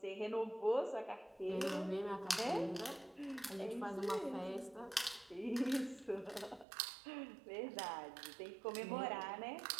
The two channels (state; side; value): drops out; left; at 6.7 s